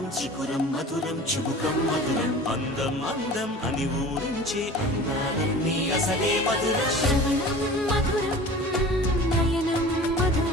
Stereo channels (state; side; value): normal; both; correlation 0.40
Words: చికురం మధురం చుబుకం మధురం అందం అందం అని ఊరించే అందాలన్నీ అసలే మధురం శ్రవణం మధురం నయనం